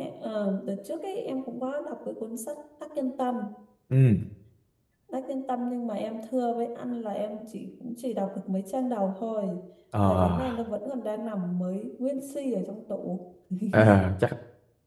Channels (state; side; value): identical; both; correlation 1.00